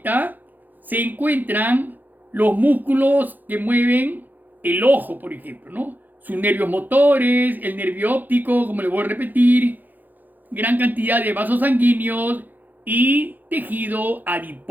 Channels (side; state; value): left; late; 0.085 ms